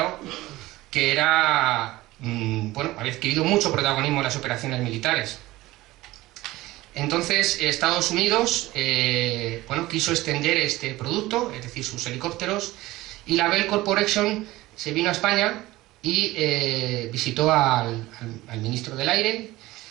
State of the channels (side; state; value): left; quieter; 18.1 dB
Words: que era, bueno, había adquirido mucho protagonismo en las operaciones militares. Entonces, Estados Unidos bueno, quiso extender este producto, es decir, sus helicópteros, y la Bell Corporation se vino a España y visitó al ministro del Aire